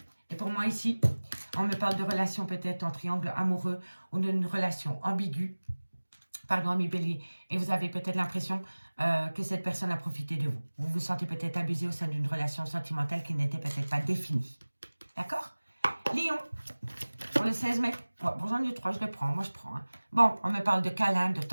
Et pour moi ici, On me parle de relation peut-être en triangle amoureux ou d'une relation ambiguë. Pardon, ami Bélier. Et vous avez peut-être l'impression que cette personne a profité de vous. Vous vous sentez peut-être abusé au sein d'une relation sentimentale qui n'était peut-être pas définie. D'accord? Lion, pour le 16 mai. Ouais, bon, j'en ai 3, je le prends. Moi, je prends. Hein. Bon, on me parle de câlin, de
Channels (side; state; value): both; inverted; correlation -1.00